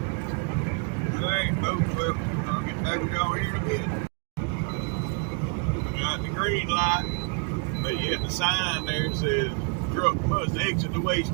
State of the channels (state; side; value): quieter; left; 35.6 dB